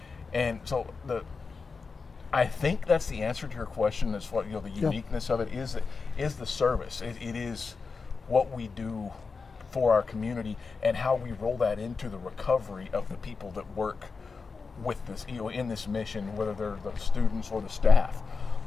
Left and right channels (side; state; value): right; quieter; 4.7 dB